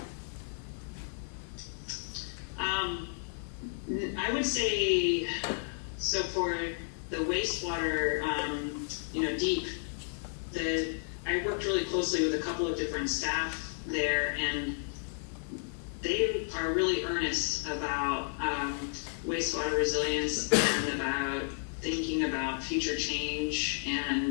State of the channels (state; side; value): silent; right; digital silence